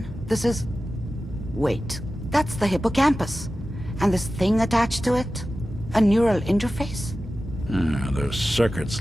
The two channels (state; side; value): normal; both; correlation 0.94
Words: This is... Wait. That's the hippocampus. And this thing attached to it? A neural interface? Those circuits